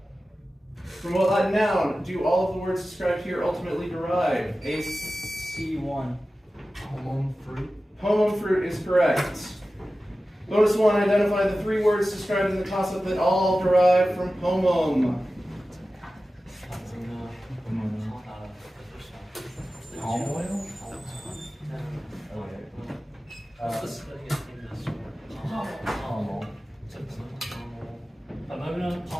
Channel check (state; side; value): normal; both; correlation 0.95